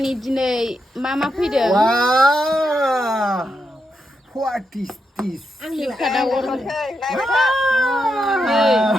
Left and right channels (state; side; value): normal; both; correlation 0.84